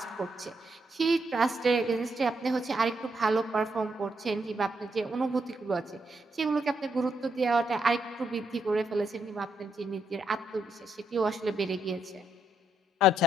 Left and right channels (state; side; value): normal; both; correlation 0.78